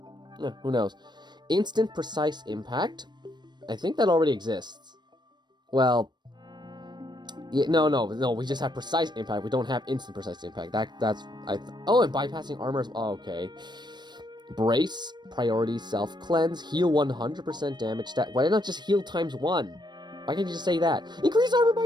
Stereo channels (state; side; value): late; left; 0.21 ms